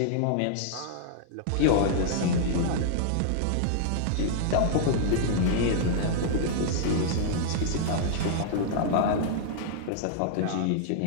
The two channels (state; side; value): different; both; correlation -0.01